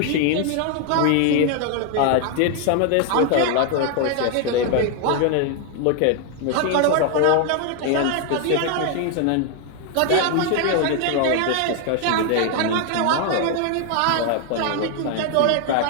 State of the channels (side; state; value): both; different; correlation 0.00